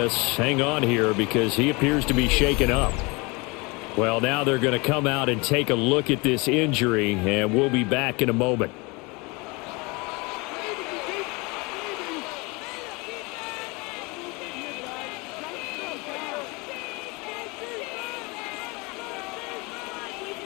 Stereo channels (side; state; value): right; quieter; 27.1 dB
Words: hang on here because he appears to be shaken up. Well, now they're going to come out and take a look at this injury, and we'll be back in a moment.